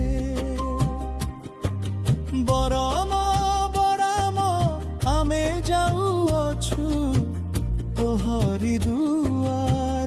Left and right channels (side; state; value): both; identical; correlation 1.00